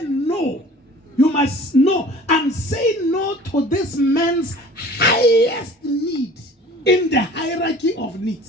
no, you must know and say no to this man's highest need in the hierarchy of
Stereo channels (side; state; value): both; normal; correlation 0.46